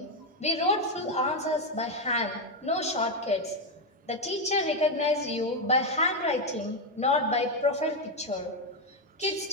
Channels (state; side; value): normal; both; correlation 0.05